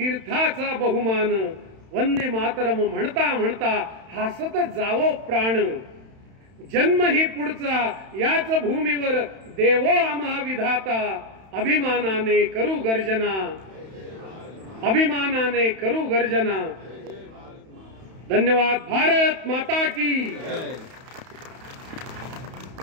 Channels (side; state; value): left; late; 31 ms